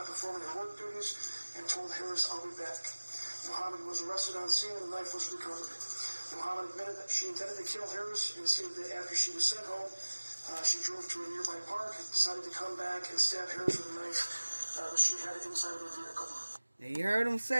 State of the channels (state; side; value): inverted; both; correlation -1.00